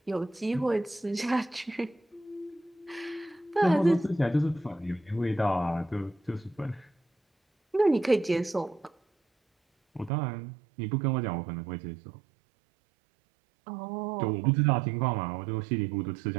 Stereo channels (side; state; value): left; drops out; at 10.1 s